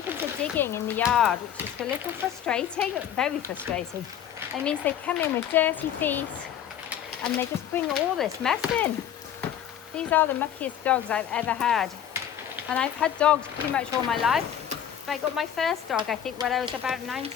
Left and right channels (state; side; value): quieter; right; 9.8 dB